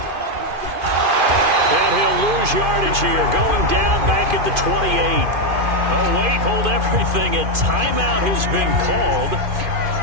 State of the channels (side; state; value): left; late; 2.5 ms